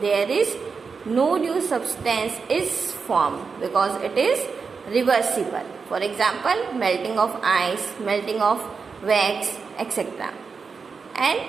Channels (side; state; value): left; quieter; 5.2 dB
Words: there is no new substance is formed because it is reversible. For example, melting of ice, melting of wax, etc. And